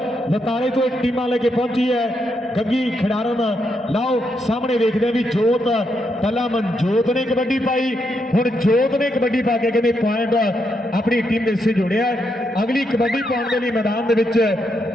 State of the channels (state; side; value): normal; both; correlation 0.80